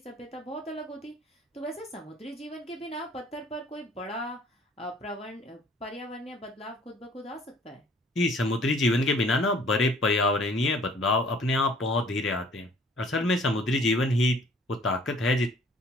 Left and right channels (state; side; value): normal; both; correlation 0.55